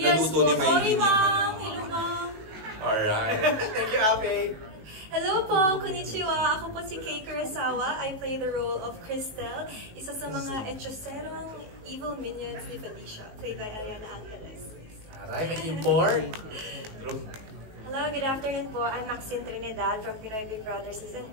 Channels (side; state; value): left; late; 19 ms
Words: Naluto po, ni May. sorry ma'am. Hello ma'am. Alright. Thank you, Ape. Hello po, konnichiwa. Ako po si Kei Kurosawa. I play the role of Cristel, isa sa mga hechicerong evil minions ni Felicia, played by Ariana Angeles. Aray, naging born. Hello, good afternoon po. I'm Maxine Trinidad from Pinoy Big Brother Season